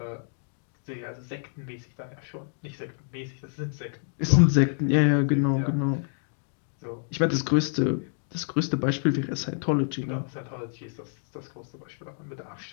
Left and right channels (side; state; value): right; silent; 59 dB below the other